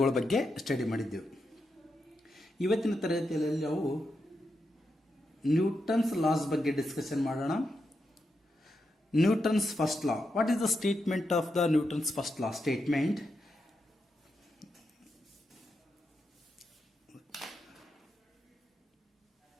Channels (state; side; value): normal; both; correlation 0.85